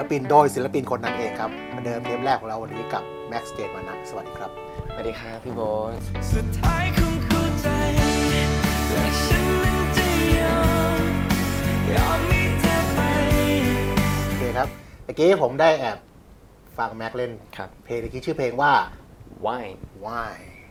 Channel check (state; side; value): identical; both; correlation 1.00